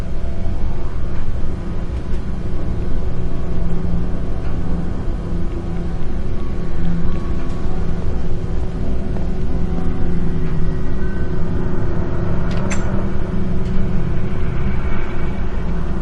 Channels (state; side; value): identical; both; correlation 1.00